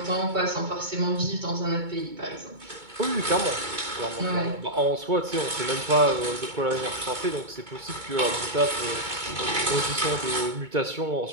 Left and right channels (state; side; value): late; left; 2.2 ms